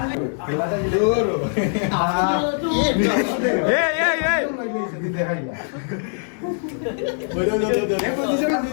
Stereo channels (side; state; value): right; silent; digital silence